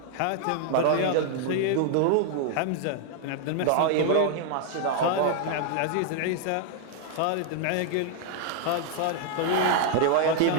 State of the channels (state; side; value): different; both; correlation 0.00